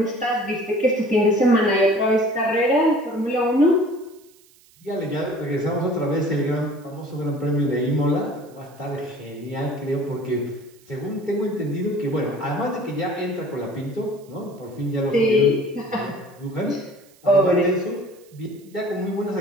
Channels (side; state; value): right; noise; hiss, 29 dB below the sound